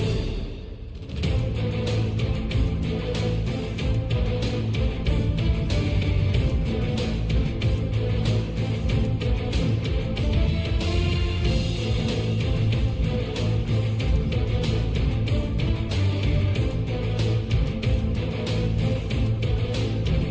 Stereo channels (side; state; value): both; identical; correlation 1.00